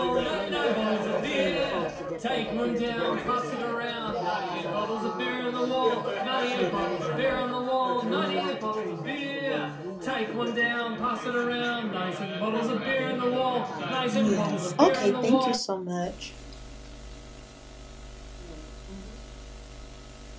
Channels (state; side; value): identical; both; correlation 1.00